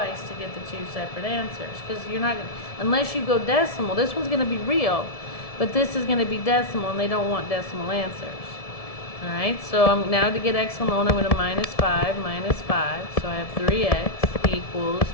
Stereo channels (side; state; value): right; late; 1.7 ms